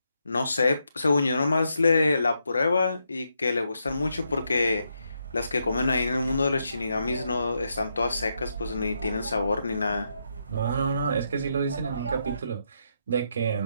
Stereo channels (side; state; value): both; inverted; correlation -0.81